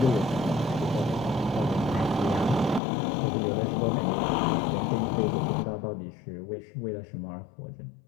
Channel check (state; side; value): drops out; right; at 2.8 s